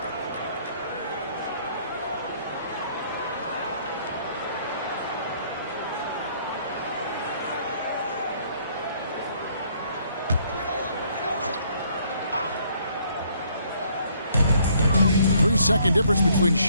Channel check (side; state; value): both; inverted; correlation -0.65